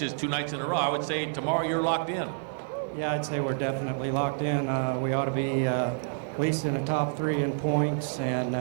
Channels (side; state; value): left; silent; digital silence